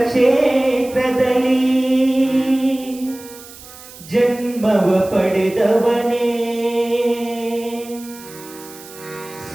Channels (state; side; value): noise; right; hiss, 18 dB below the sound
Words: ಕ್ಷೇತ್ರದಲ್ಲಿ ಜನ್ಮವ ಪಡೆದವನೇ,